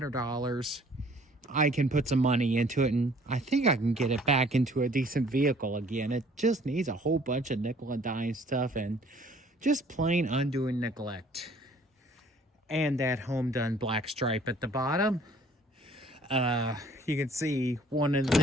I can put some money into it, and I think I can get it back into a decent vehicle again. It just needs a whole bunch of nickel and dime stuff and just plain undoing neglect. And that home done black stripe at the bottom. You can see one of the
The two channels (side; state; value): both; normal; correlation 0.56